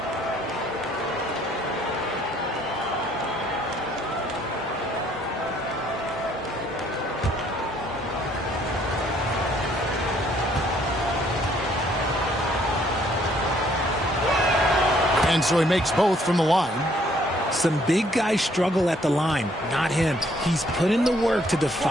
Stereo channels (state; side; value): normal; both; correlation 0.64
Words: And so he makes both from the line. Some big guys struggle at the line, not him. He's put in the work to